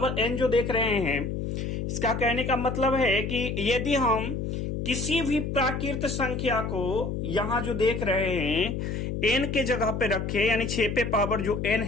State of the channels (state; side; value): noise; left; hum, 3 dB below the sound